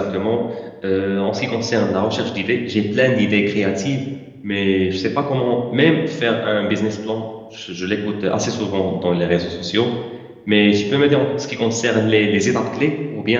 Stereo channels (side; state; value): both; identical; correlation 1.00